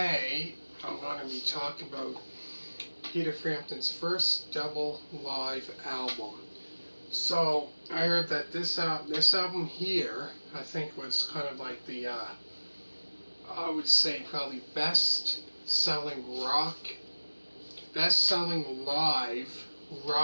I'm going to be talking about Peter Frampton's first double live album. So I heard that this album here, I think, was kind of like the, I would say probably best-selling live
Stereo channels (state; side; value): inverted; both; correlation -1.00